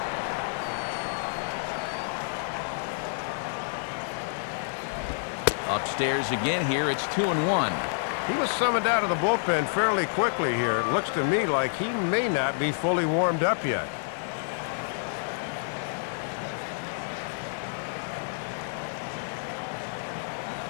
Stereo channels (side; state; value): right; silent; digital silence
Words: Upstairs again here, it's 2-1. He was summoned out of the bullpen fairly quickly here. It looks to me like he may not be fully warmed up yet.